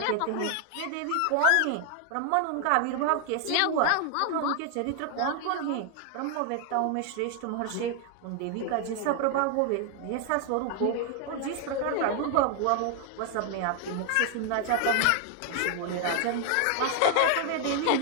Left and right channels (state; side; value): different; both; correlation 0.00